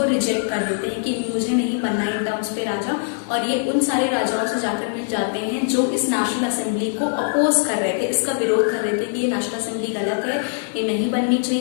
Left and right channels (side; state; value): right; silent; digital silence